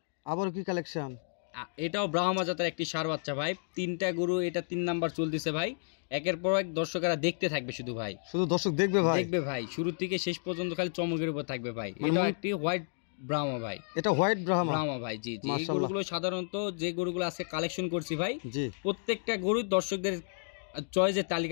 আবার কি কালেকশন? এটাও ব্রাহ্মা জাতের একটি ষাঁড় বাচ্চা ভাই। 3টা গরু, এটা 3 নাম্বার চলতেছে ভাই। একের পর এক দর্শকেরা দেখতে থাকবে, শুধু ভাই, শুধু দর্শক দেখবে ভাই। শুরু থেকে শেষ পর্যন্ত খালি চমকের উপর থাকবে ভাই। এটা একটি হোয়াইট ব্রাহ্মা ভাই। এটা হোয়াইট ব্রাহ্মা ভাই। জি জি। এই গরুগুলো সাধারণত যে গরুগুলো আজকে কালেকশন করছি ভাই, প্রত্যেকটা গরু দর্শকদের চয়েসের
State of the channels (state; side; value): silent; right; digital silence